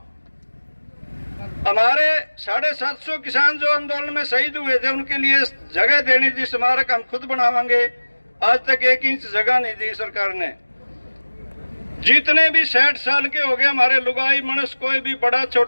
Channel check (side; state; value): both; inverted; correlation -1.00